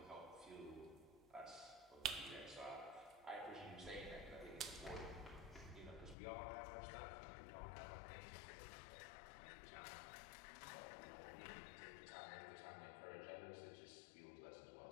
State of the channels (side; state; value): right; drops out; at 6.2 s